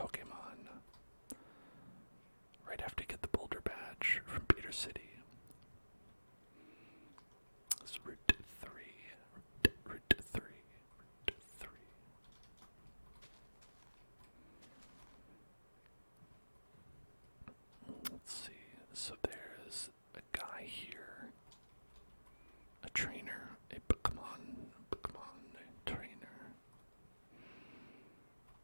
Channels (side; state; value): both; inverted; correlation -1.00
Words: Right after you get the Boulder Badge from Peter City. It's Route 3. Route 3. Route 3. Let's see. So there's a guy here. A trainer. A Pokemon trainer.